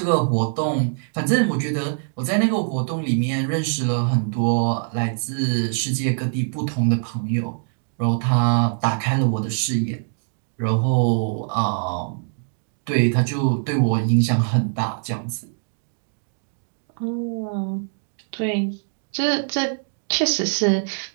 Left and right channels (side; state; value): left; silent; digital silence